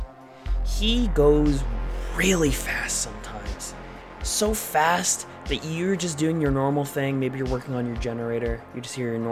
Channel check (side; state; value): both; identical; correlation 1.00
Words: He goes really fast sometimes. So fast that you're just doing your normal thing. Maybe you're working on your generator. You just hear your